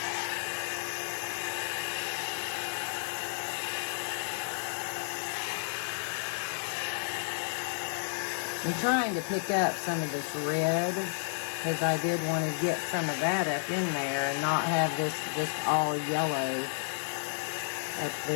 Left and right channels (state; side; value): silent; right; digital silence